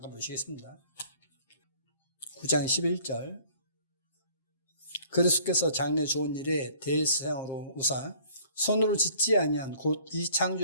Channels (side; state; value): both; inverted; correlation -0.55